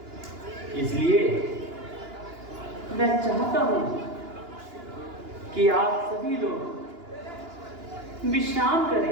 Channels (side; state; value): left; late; 2.9 ms